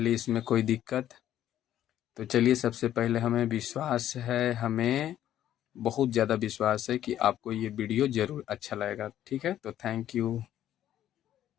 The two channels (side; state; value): right; quieter; 11.7 dB